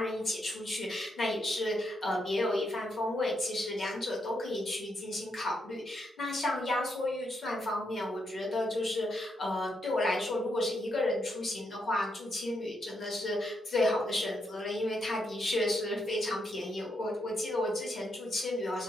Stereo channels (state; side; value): normal; both; correlation 0.79